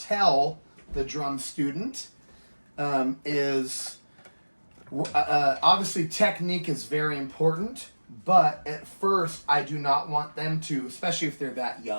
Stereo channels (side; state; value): both; inverted; correlation -1.00